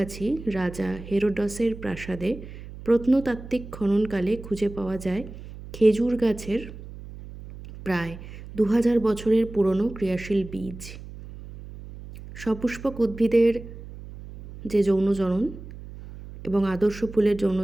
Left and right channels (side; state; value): right; noise; hum, 14 dB below the sound